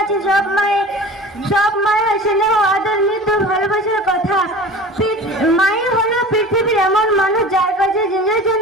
আছে সব মায়ের স্নেহ, আদর, মৃত্যু, ভালোবাসার কথা। মাই হলো পৃথিবীর এমন মানুষ যার কাছে নিজের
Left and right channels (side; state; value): both; normal; correlation 0.38